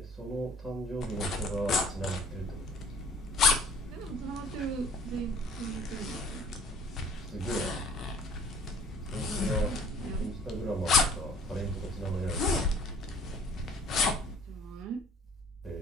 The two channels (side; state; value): both; normal; correlation 0.52